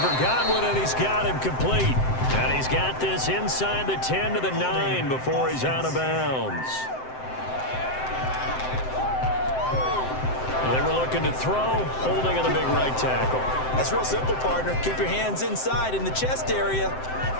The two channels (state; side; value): late; right; 7.8 ms